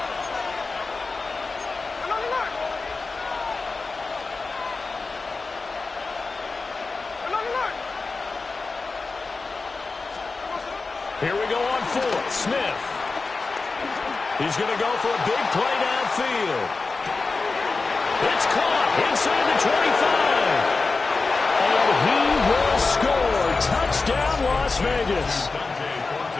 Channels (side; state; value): right; quieter; 4.0 dB